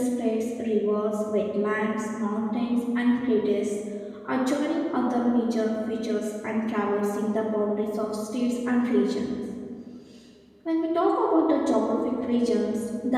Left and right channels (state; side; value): identical; both; correlation 1.00